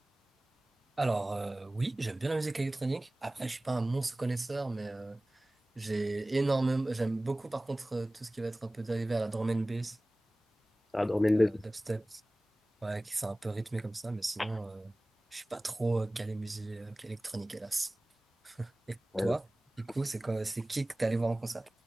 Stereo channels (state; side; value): normal; both; correlation 0.98